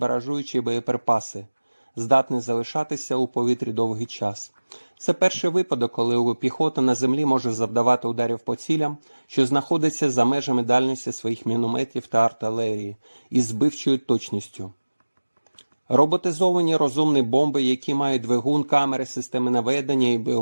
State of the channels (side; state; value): both; inverted; correlation -1.00